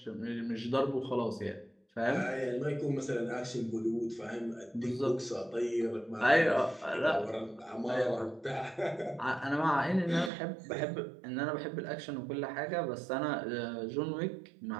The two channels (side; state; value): left; drops out; at 10.3 s